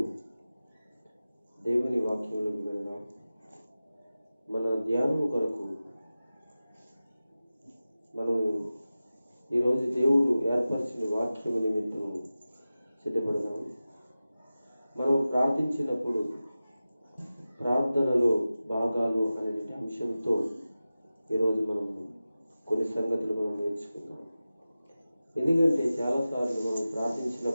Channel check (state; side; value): inverted; both; correlation -0.95